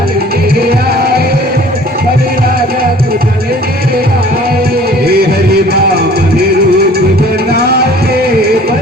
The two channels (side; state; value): both; normal; correlation 0.50